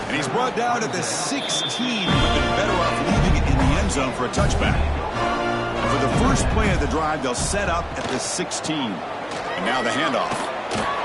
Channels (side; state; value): both; identical; correlation 1.00